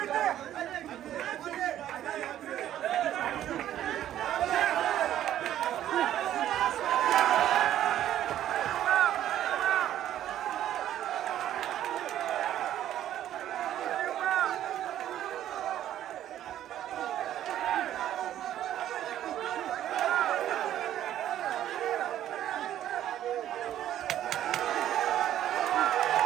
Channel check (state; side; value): quieter; left; 11.9 dB